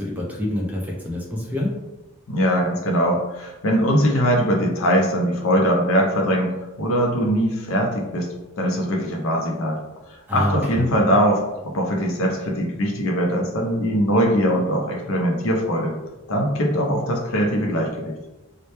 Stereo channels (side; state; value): both; normal; correlation 0.37